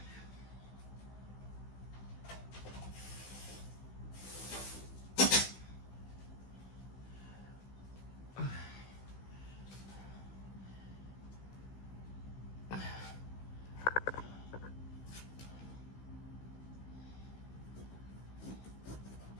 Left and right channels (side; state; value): right; late; 16 ms